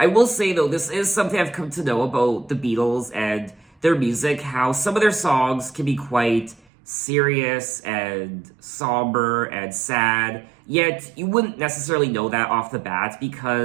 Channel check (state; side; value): drops out; left; at 6.6 s